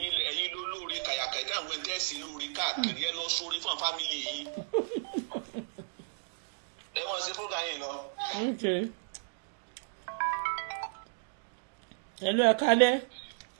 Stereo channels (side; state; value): left; silent; digital silence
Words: ló lóore kàyàkàyà àwọn ẹgbẹ́ sí lóore káàkiri ẹ lọ sórí fún fámìlì yìí. Ẹ wọ́n ṣe fúnra yín lọ. Hello, ẹ kálẹ́.